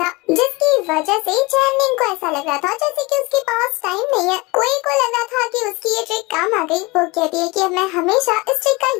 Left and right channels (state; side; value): quieter; right; 24.6 dB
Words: जिसकी वजह से चैनिंग को ऐसा लग रहा था जैसे कि उसके पास टाइम नहीं है। कोई को लग रहा था कि उसकी ये ट्रिक काम आ गई। वो कहती है कि अब मैं हमेशा इस ट्रिक का